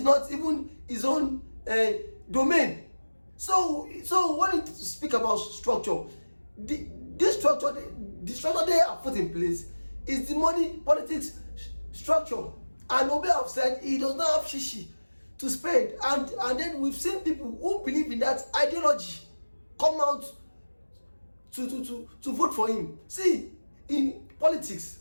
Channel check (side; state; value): both; inverted; correlation -1.00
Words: not even his own domain. So when you speak about structure, the structure they have put in place is the money politics structure. And Obi have said he does not have shishi to spend. And then we've seen people who believe in that ideology come out to vote for him. See, in politics,